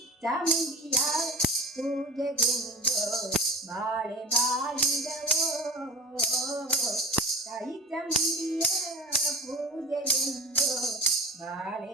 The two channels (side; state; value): both; normal; correlation 0.34